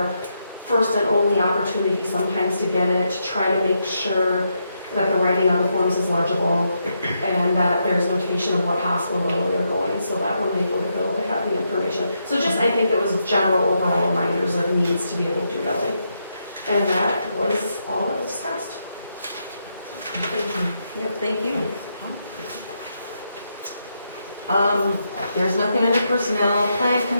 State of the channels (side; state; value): both; inverted; correlation -0.81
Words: first and only opportunity sometimes to get it, to try to make sure that the writing on the forms is legible and that there's notation of what hospital they're going, so that when they go to bill, they have the information. So just, I think it was general overall reminders of needs to be able to do billing. And that was all that was discussed. Yep, thank you. There's nothing under personnel. Plan